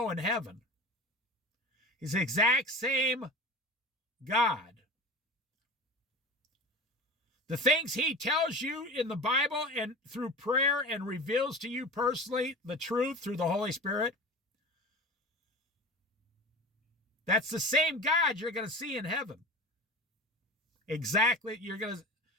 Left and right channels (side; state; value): both; normal; correlation 0.33